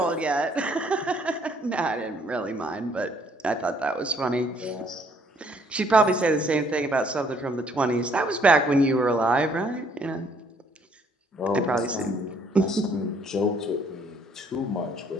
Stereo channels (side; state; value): both; normal; correlation 0.64